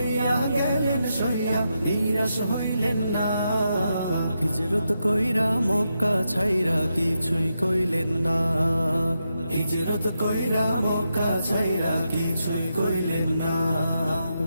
গেলেন সইয়া, নিরাশ হইলেন না। হিজরত কইরা মক্কা ছাইরা কিছুই কইলেন না, হিজরত কইরা মক্কা ছাইরা কিছুই কইলেন না।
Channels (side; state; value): both; inverted; correlation -0.85